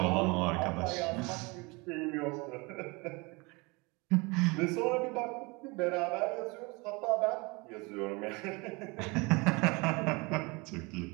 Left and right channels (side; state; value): left; quieter; 26.7 dB